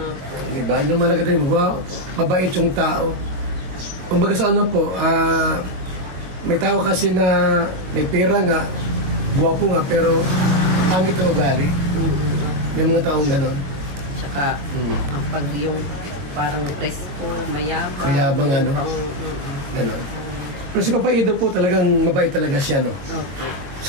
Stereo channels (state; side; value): late; left; 22 ms